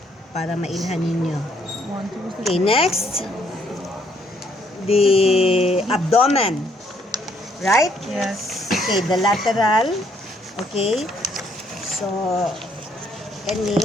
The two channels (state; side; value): normal; both; correlation 0.68